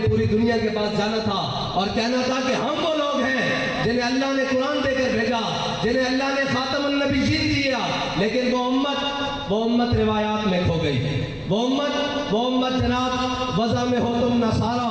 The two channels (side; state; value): both; identical; correlation 1.00